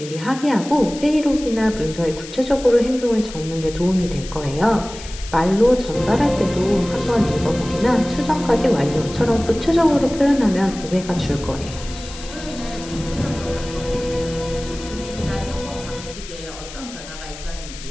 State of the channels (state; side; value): noise; left; hiss, 14 dB below the sound